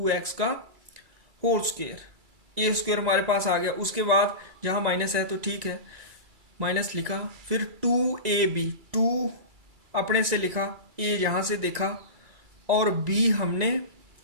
का होल स्क्वायर। a² हमारे पास आ गया। उसके बाद जहां माइनस है तो ठीक है, माइनस लिखा। फिर 2ab, 2 अपने से लिखा, a यहां से देखा और b हमने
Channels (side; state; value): left; late; 1.9 ms